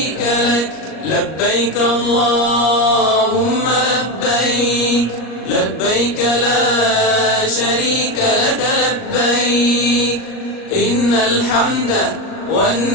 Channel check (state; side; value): late; right; 38 ms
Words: لك لبيك اللهم لبيك لبيك لا شريك لك لبيك إن الحمد